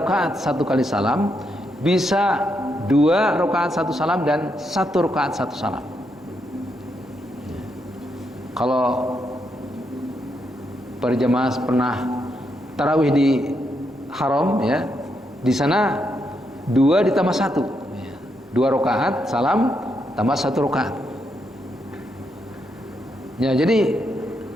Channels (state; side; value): normal; both; correlation 0.80